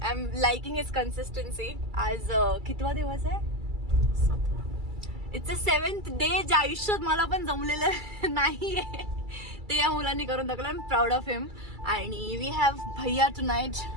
am liking his consistency. आज कितवा दिवस आहे? इट्स अ 7th डे जे आयुष्यात मला पण जमलेलं नाहीये ते या मुलांनी करून दाखवलं. I am proud of him. आणि वी हॅव भैया tonight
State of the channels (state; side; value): late; left; 2.3 ms